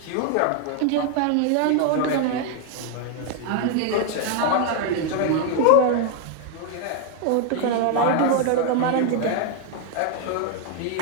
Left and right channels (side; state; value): both; different; correlation 0.00